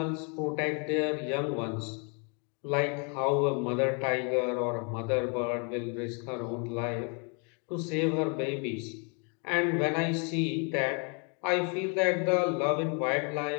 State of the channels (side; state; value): right; quieter; 36.1 dB